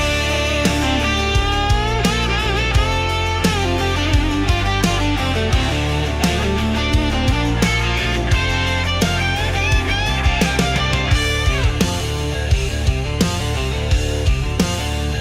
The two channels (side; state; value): both; identical; correlation 1.00